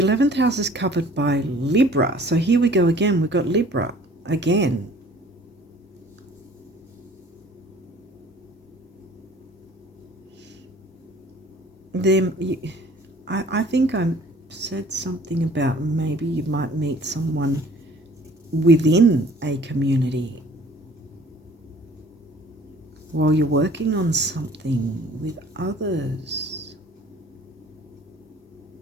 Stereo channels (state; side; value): normal; both; correlation 0.52